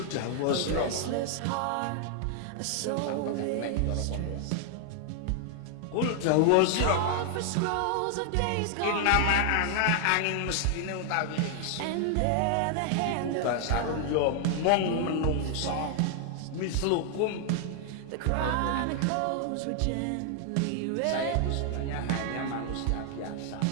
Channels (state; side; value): different; both; correlation 0.00